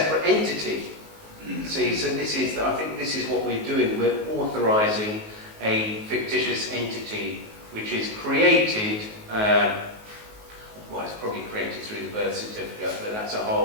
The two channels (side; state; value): left; late; 19 ms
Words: entity. See, so I think this is what we're doing. We're authorising a fictitious entity which is created, well, it's probably created through the birth certificate, but that's a